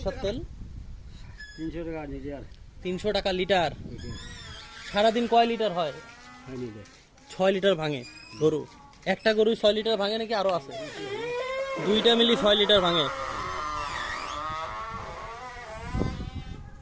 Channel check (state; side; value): identical; both; correlation 1.00